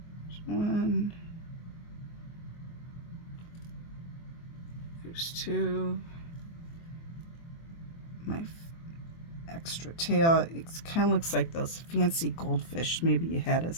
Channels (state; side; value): late; right; 24 ms